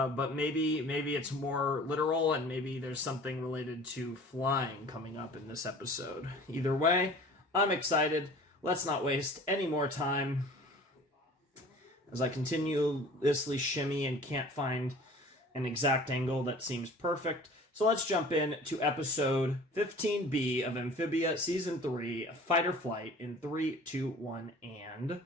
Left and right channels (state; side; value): normal; both; correlation 0.45